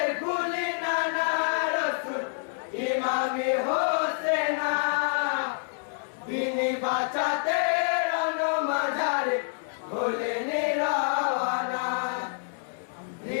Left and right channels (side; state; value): right; silent; 60 dB below the other